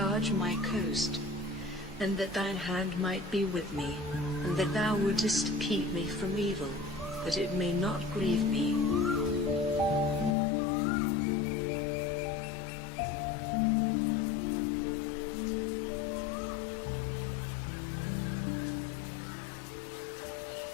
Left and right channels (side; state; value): right; drops out; at 10.4 s